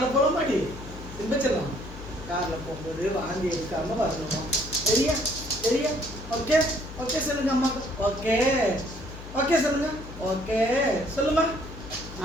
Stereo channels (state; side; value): noise; left; hum, 13 dB below the sound